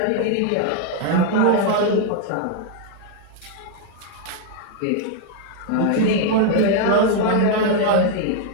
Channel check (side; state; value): both; different; correlation 0.00